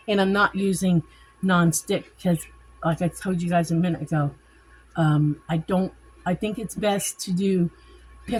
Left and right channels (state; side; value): identical; both; correlation 1.00